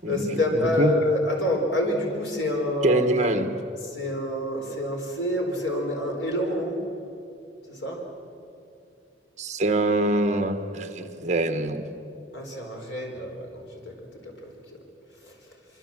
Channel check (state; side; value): normal; both; correlation 0.39